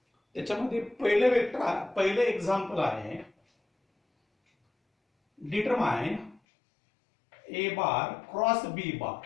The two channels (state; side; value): drops out; right; at 6.4 s